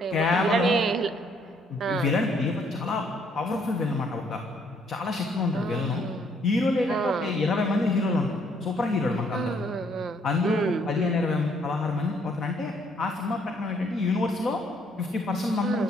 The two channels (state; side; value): normal; both; correlation 0.67